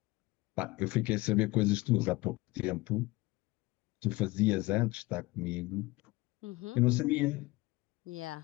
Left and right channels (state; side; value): quieter; right; 21.3 dB